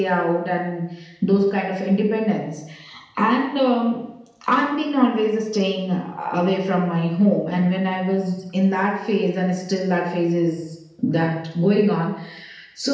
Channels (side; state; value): both; identical; correlation 1.00